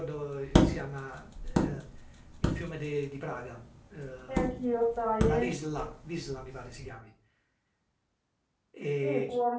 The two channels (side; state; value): both; identical; correlation 1.00